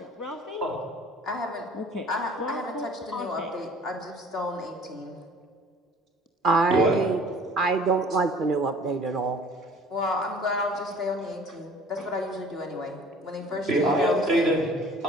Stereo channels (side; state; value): both; normal; correlation 0.50